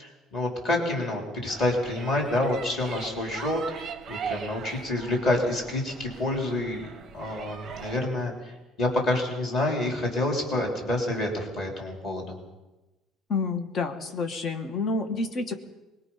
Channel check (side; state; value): both; normal; correlation 0.58